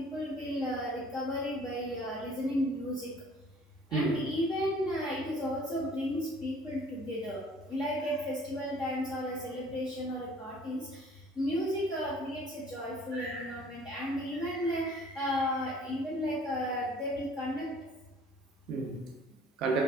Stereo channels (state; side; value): normal; both; correlation 0.53